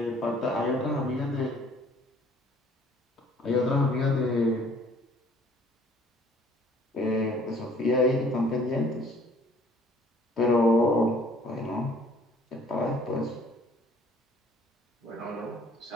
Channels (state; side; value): normal; both; correlation 0.57